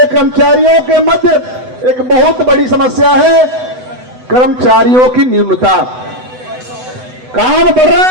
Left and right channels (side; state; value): left; late; 8.0 ms